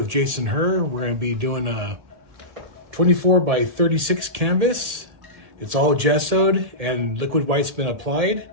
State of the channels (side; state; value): left; late; 1.8 ms